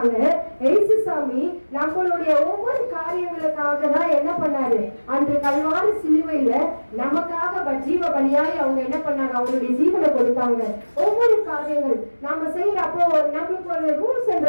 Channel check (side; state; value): both; inverted; correlation -1.00